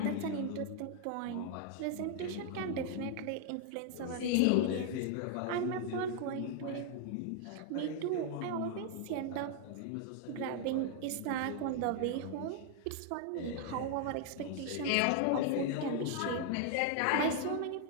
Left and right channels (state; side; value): different; both; correlation 0.00